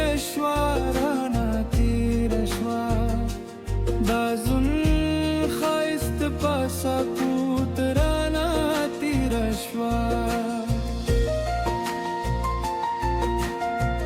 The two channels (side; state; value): both; identical; correlation 1.00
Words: राना तिरश्वा दाजुन खाइस्त पासाकूत राना तिरश्वा